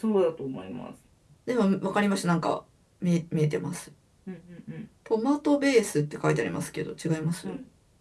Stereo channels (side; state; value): both; identical; correlation 1.00